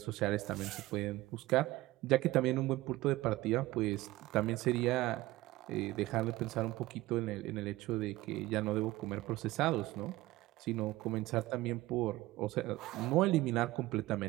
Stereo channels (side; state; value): left; quieter; 18.0 dB